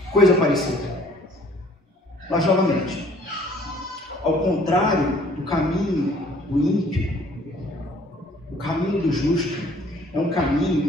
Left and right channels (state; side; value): normal; both; correlation 0.57